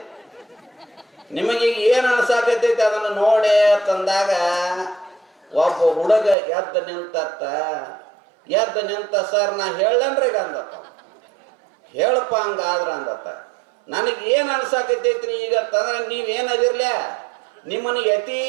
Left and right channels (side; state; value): left; drops out; at 6.4 s